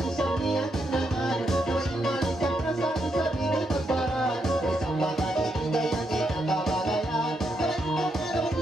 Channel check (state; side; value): normal; both; correlation 0.80